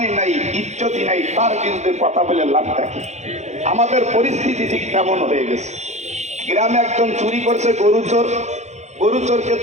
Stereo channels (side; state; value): left; late; 0.33 ms